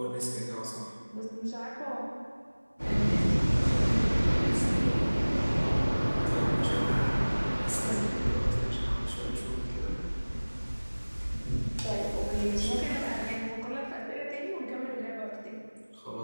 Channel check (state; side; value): inverted; both; correlation -1.00